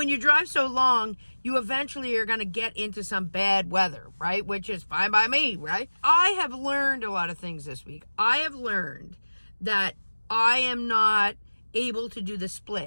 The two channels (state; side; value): inverted; both; correlation -1.00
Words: you drive so long, you eventually are going to get into some bad weather, right? Which is fine by me, right? I have learned a lot of things this week. I have learned that I am not able to do the